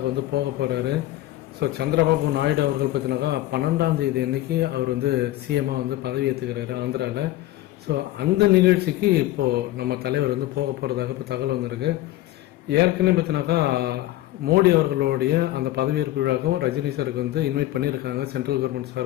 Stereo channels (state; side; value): quieter; right; 15.5 dB